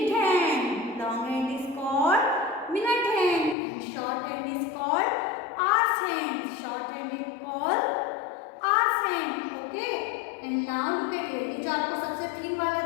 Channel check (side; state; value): right; drops out; at 3.6 s